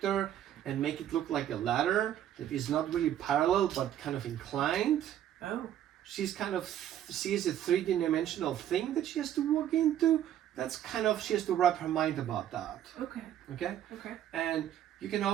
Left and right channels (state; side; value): quieter; left; 11.1 dB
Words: and make it look like a ladder that is not really parallel but kind of inclined. Oh. She's kind of sees a 3D-dimensional thing that she has to walk into. That's kind of, she has to wrap her mind about that. Okay. Okay? Okay. And you can